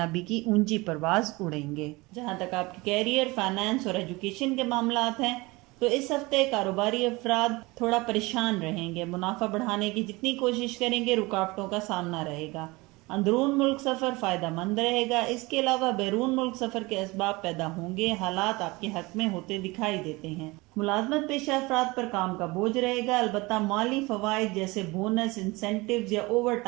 کی اونچی پرواز اڑیں گے۔ جہاں تک آپ کے کیریئر، فائنانس اور ایجوکیشن کے معاملات ہیں تو اس ہفتے کاروباری افراد تھوڑا پریشان رہیں گے، منافع بڑھانے کی جتنی کوشش کریں گے رکاوٹوں کا سامنا رہے گا۔ اندرون ملک سفر فائدہ مند رہے گا۔ اس کے علاوہ بیرون ملک سفر کے اسباب پیدا ہوں گے، حالات آپ کے حق میں ہوتے دکھائی دیتے ہیں۔ ملازمت پیشہ افراد پر کام کا بوجھ رہے گا، البتہ مالی فوائد جیسے بونس، انسینٹیوز یا اوور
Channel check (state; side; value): quieter; left; 23.2 dB